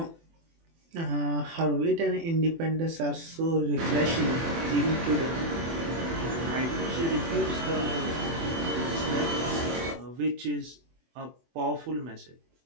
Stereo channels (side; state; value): left; late; 24 ms